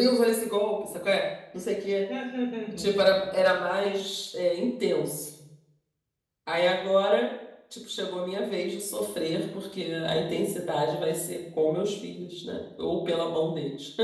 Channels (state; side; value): identical; both; correlation 1.00